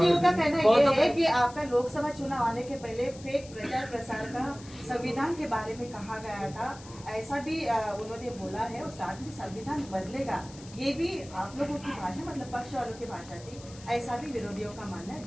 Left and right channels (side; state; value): left; noise; hiss, 19 dB below the sound